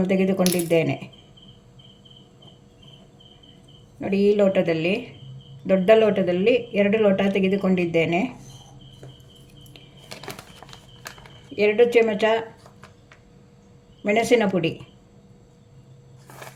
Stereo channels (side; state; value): both; identical; correlation 1.00